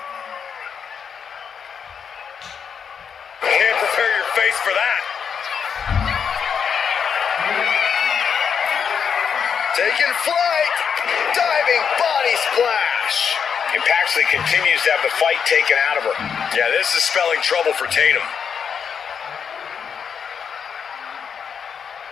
Can't prepare your face for that. Taking flight. Diving body splash. And Paxley continues to have the fight taken out of her. Yeah, this is spelling trouble for Tatum.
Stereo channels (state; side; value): quieter; right; 6.9 dB